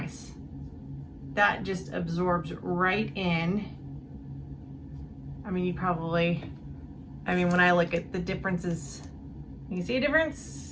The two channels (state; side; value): identical; both; correlation 1.00